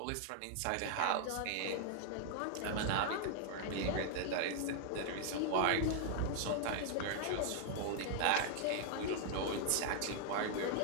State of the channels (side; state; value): both; different; correlation 0.00